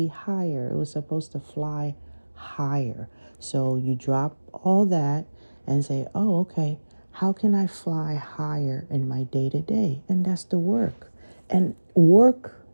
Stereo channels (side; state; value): both; inverted; correlation -1.00